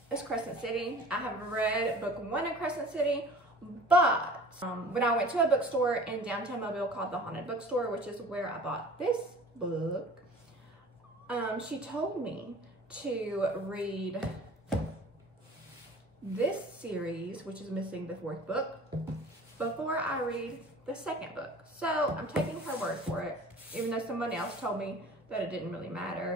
is Crescent City. I have read book 1 of Crescent City, but when I went to a bookstore in downtown Mobile called the Haunted Bookstore, which is where I bought this book, she told me to read this series, which is missing the 4th book, before I read the 2nd book. So I'm taking her word for it, even though somebody else told me that it didn't really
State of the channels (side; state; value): both; normal; correlation 0.45